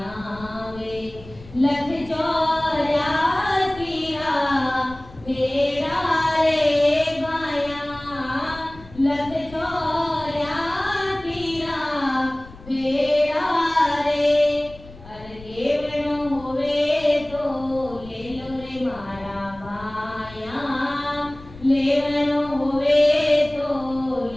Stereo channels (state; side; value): noise; left; rumble, 19 dB below the sound